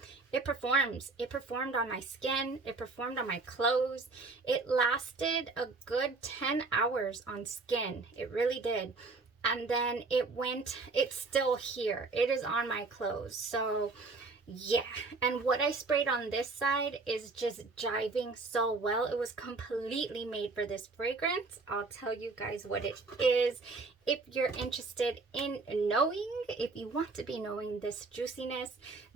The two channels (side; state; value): left; quieter; 3.8 dB